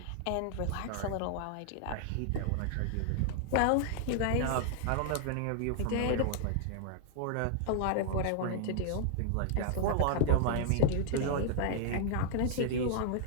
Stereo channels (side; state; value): both; different; correlation -0.01